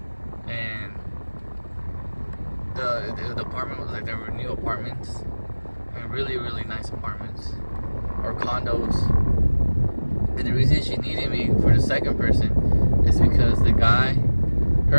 and the apartment was like, there were new apartments, and really nice apartments or condos. And the reason she needed me for the second person is because the guy,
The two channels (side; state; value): both; inverted; correlation -1.00